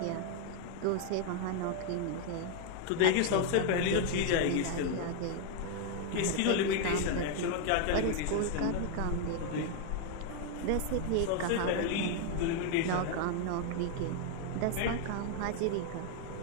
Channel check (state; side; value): different; both; correlation 0.00